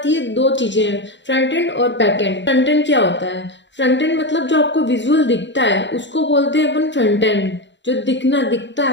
है दो चीजें, फ्रंट एंड और बैक एंड। फ्रंट एंड क्या होता है? फ्रंट एंड मतलब जो आपको विजुअल दिखता है उसको बोलते हैं अपन फ्रंट एंड, जो दिखता है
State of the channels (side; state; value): right; late; 0.53 ms